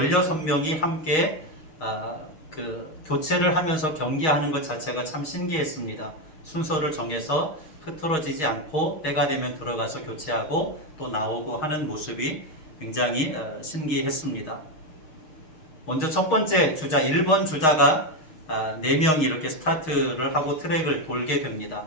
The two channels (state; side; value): late; right; 6.4 ms